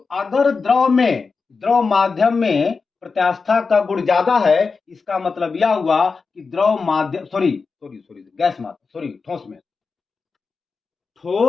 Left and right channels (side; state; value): right; quieter; 4.7 dB